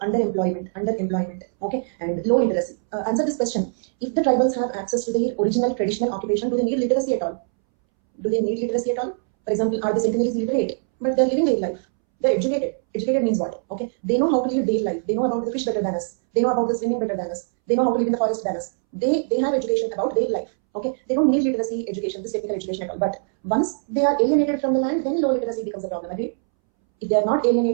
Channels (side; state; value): left; silent; 64 dB below the other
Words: Okay, and low literacy. Answer this question: if the tribals have access to their original traditional occupation, do they need literacy at all? Do they need literacy at all? For example, are the centennials literate? But they're living their life. They're educated. Educated means what? Okay, they know how to live their life. They know about the fish better than us. They know about the swimming better than us. They know how to live in the forest than us. They have education about their life. Okay, they don't need literacy education, this technical education at all. But once they are alienated from the land, then low literacy becomes a problem. Agreed? If they are not